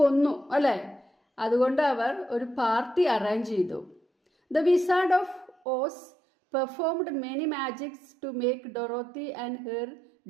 അല്ലേ? അതുകൊണ്ട് അവർ ഒരു പാർട്ടി അറേഞ്ച് ചെയ്തു. The Wizard of Oz performed many magics to make Dorothy and her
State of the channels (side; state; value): left; drops out; at 5.6 s